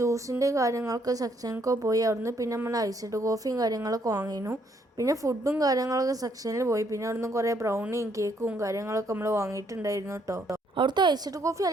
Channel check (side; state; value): both; normal; correlation 0.70